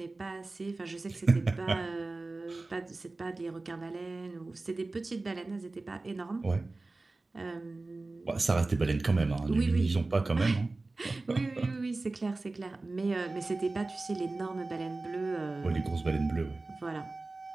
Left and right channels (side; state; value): left; quieter; 3.3 dB